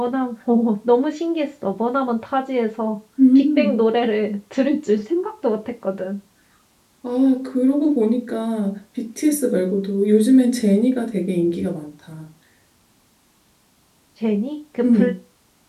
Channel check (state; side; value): identical; both; correlation 1.00